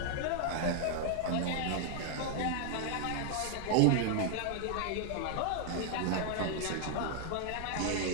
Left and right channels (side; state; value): both; different; correlation 0.00